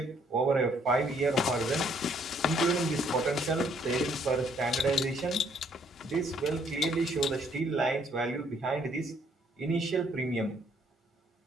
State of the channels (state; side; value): normal; both; correlation 0.66